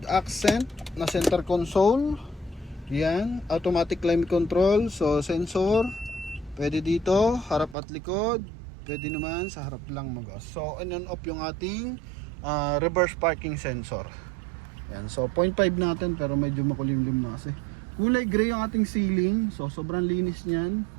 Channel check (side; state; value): left; drops out; at 7.8 s